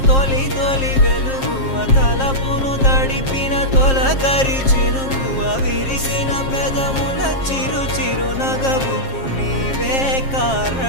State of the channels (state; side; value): late; right; 7.5 ms